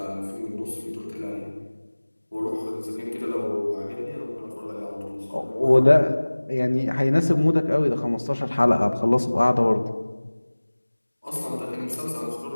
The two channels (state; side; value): inverted; both; correlation -1.00